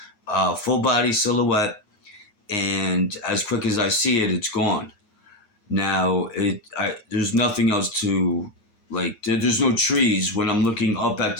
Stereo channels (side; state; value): right; late; 9.6 ms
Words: full body silhouette, and as quick as I see it, it's gone. Now, there's nothing else to like. There's no trees. When I'm looking up at